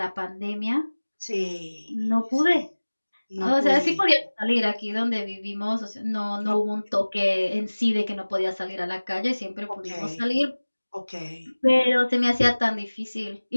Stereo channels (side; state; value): both; inverted; correlation -1.00